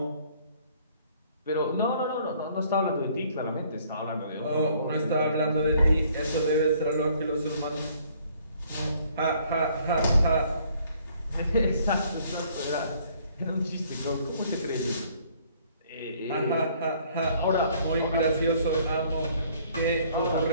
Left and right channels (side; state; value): both; inverted; correlation -0.61